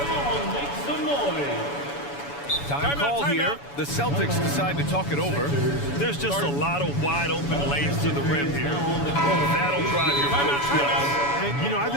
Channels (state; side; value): late; right; 7.0 ms